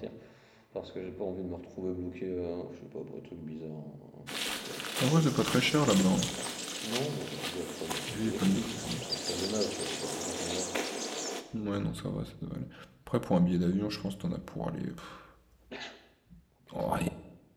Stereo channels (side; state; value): both; identical; correlation 1.00